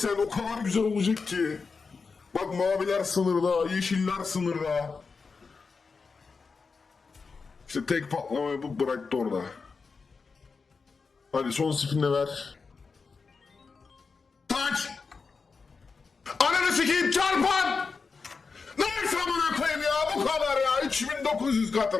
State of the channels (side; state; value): right; quieter; 4.8 dB